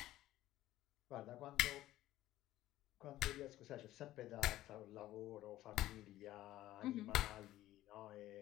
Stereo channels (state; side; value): quieter; right; 14.9 dB